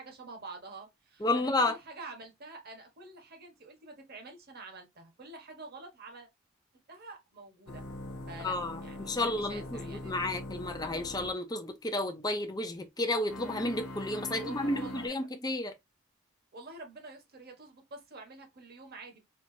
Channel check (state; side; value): normal; both; correlation 0.41